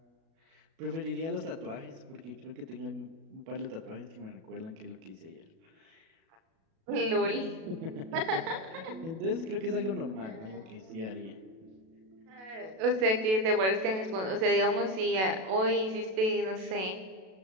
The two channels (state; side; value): late; left; 37 ms